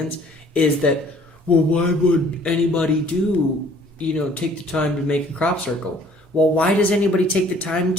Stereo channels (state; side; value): normal; both; correlation 0.56